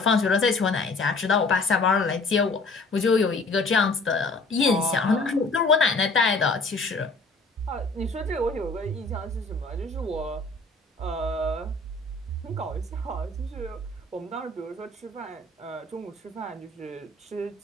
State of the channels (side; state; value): right; quieter; 3.3 dB